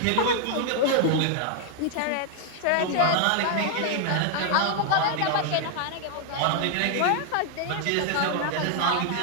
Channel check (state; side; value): different; both; correlation 0.00